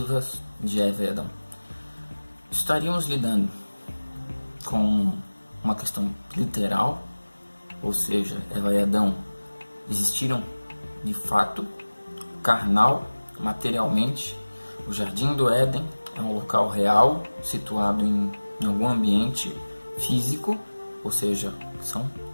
de Eva e Adão, estaríamos lidando com uma questão literal, ou seja, Eva e Adão existiram de fato, carnal, materialmente. O Jardim do Éden é um local real, situado em algum ambiente físico, ou seja, são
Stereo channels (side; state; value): both; inverted; correlation -1.00